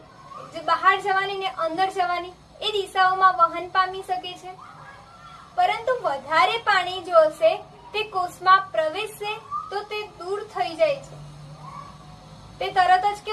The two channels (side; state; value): both; identical; correlation 1.00